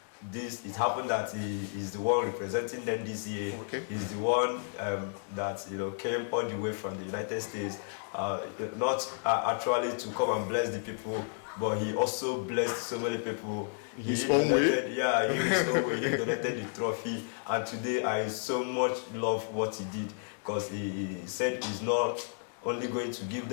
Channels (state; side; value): silent; right; digital silence